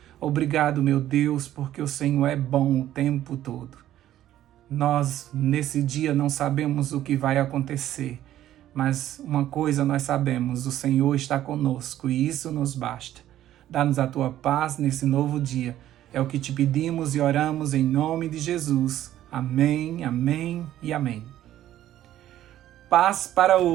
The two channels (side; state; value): left; quieter; 12.7 dB